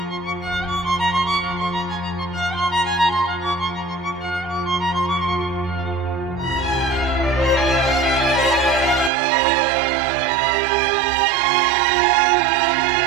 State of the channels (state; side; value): drops out; left; at 9.1 s